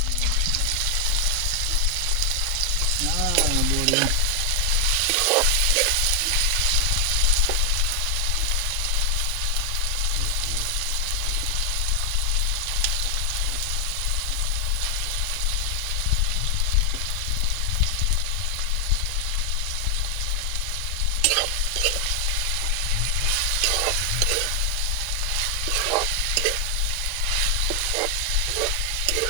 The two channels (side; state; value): both; normal; correlation 0.00